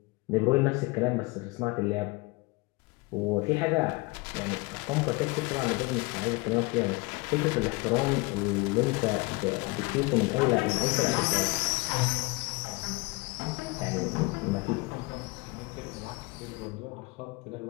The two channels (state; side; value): quieter; right; 25.6 dB